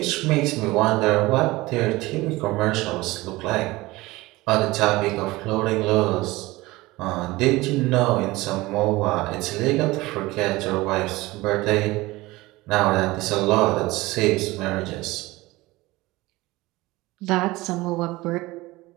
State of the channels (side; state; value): left; quieter; 20.3 dB